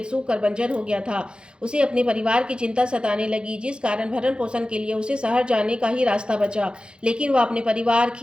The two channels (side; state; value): left; late; 0.052 ms